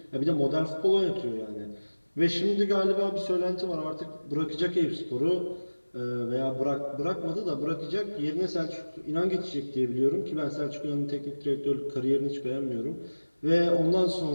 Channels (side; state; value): both; inverted; correlation -1.00